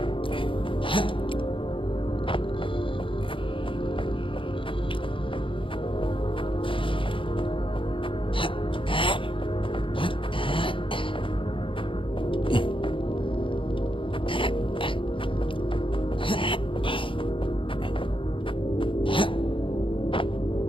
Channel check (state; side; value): late; right; 0.25 ms